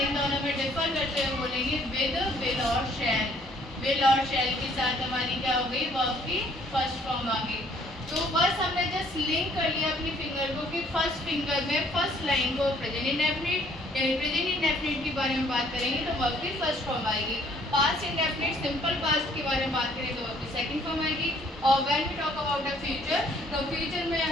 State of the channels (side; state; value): both; normal; correlation 0.61